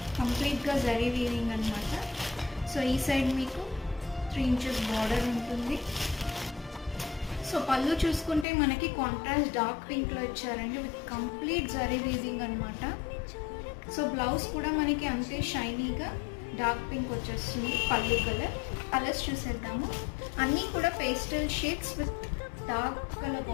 కంప్లీట్గా జరీ వీవింగ్ అనమాట. సో ఈ సైడ్ మీకు 3 ఇంచెస్ బార్డర్ ఉంటుంది. సో పళ్ళు చూసుకుంటే మనకి కాంట్రాస్ట్ డార్క్ పింక్లో ఇచ్చారండి విత్ కంప్లీట్ జరీ వీవింగ్ అనమాట. సో బ్లౌజ్ కూడా మనకి అంతే షైనీగా డార్క్ పింక్ వచ్చేస్తుంది. పళ్ళు కలర్స్ చూసేద్దాము. అన్నీ కూడా pastel shades with dark colour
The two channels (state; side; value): drops out; right; at 8.5 s